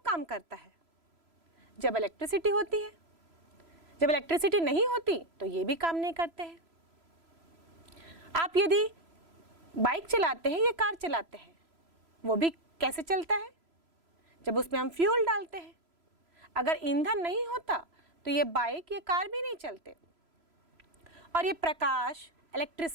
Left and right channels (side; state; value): left; late; 3.0 ms